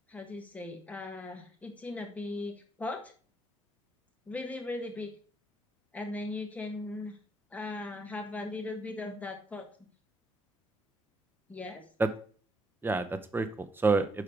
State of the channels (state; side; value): normal; both; correlation 0.76